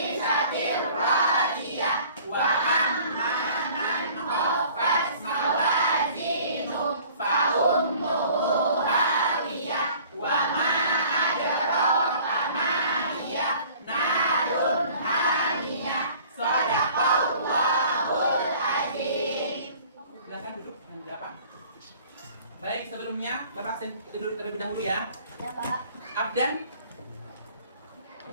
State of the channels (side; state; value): both; inverted; correlation -0.51